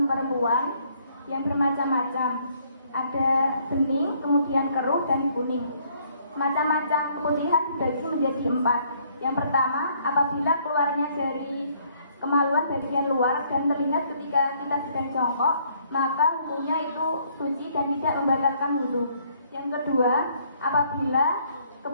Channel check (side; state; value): both; inverted; correlation -0.65